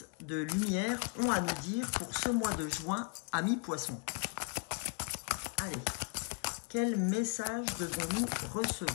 de lumière ont à nous dire pour ce mois de juin, amis poissons. Allez, quel message devons-nous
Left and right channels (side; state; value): right; quieter; 33.4 dB